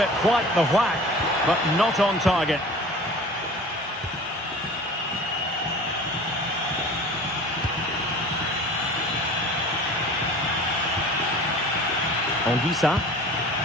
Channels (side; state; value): both; normal; correlation 0.41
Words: quite the whack, but not on target. Anguissa.